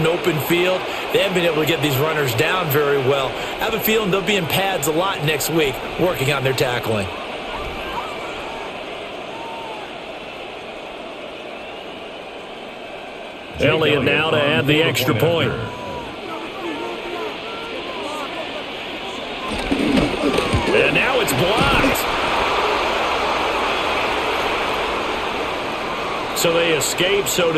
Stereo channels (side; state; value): both; identical; correlation 1.00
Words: open field. They haven't been able to get these runners down very well. I have a feeling they'll be in pads a lot next week, working on their tackling. Elliott now to add the extra point. And now it's blocked. So they escape, so